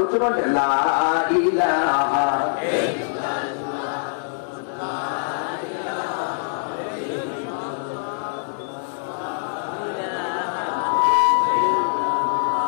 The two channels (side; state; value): right; silent; digital silence